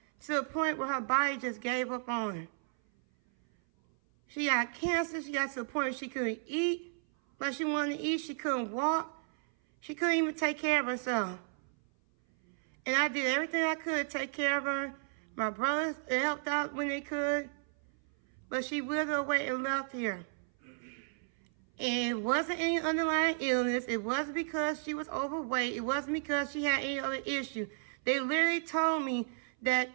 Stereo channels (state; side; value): silent; left; 55 dB below the other